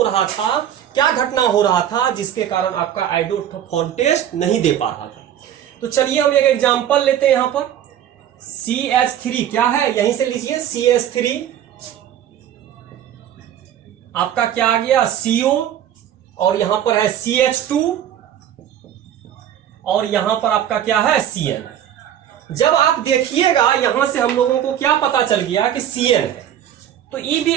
रहा था, क्या घटना हो रहा था जिसके कारण आपका आइडोफॉर्म टेस्ट नहीं दे पा रहा था। तो चलिए हम एक एग्जांपल लेते हैं। यहां पर CH3 क्या है, यहीं से लीजिए, CH3 आपका क्या आ गया, CO, और यहां पर है CH2, और यहां पर आपका क्या है, CN। जब आप देखिएगा यहां से हम लोगों को क्या पता चल गया कि CN है, तो ये भी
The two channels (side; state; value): left; quieter; 10.4 dB